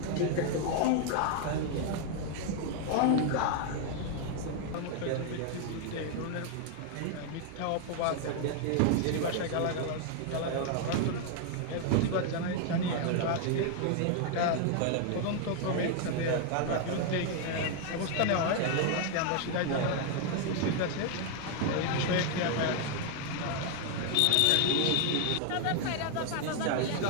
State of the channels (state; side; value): different; both; correlation 0.00